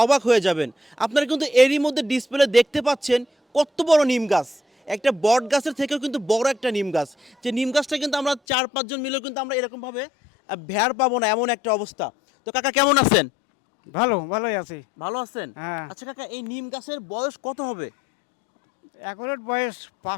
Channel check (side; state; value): right; drops out; at 8.4 s